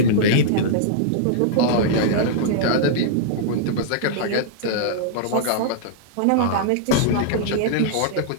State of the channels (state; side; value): different; both; correlation -0.02